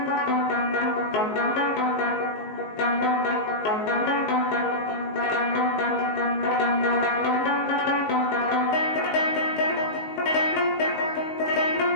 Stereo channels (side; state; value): right; late; 19 ms